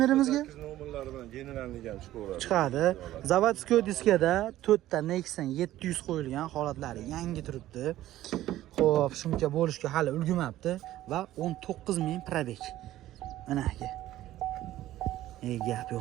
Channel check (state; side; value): quieter; left; 14.3 dB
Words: 8 nomerlari bilan generalni ham chiqaveradi. Chiqadi. Zavodskiy diskada 4 ta Nexon 700 qo'yilgan, holatlari yangi turibdi. Xo'p, shuncha bo'lishga hali ulgurmabdi va 19000 probeg. Mana aka. Gap